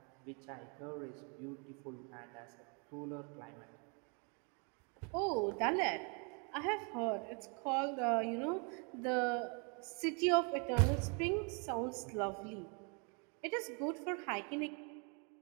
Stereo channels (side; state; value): left; quieter; 35.9 dB